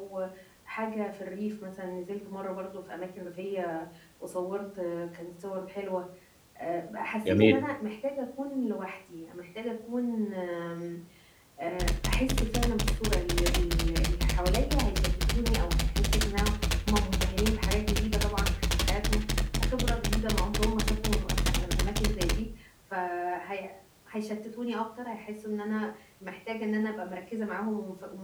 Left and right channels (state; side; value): identical; both; correlation 1.00